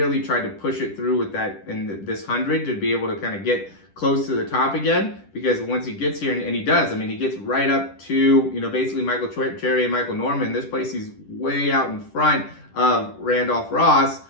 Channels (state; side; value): late; right; 10 ms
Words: tried to push it through with that in this 100 to be able to kind of get close to the top again, because once he gets here, and he does, I mean, he gets right up to, basically Michael Cherry and Michael Norman. This place, he's way out in front of Randolph Ross.